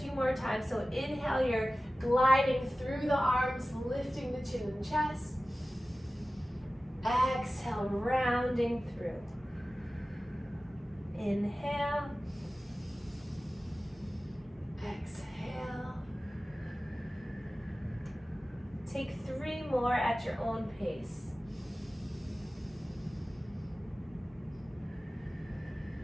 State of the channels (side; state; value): both; normal; correlation 0.96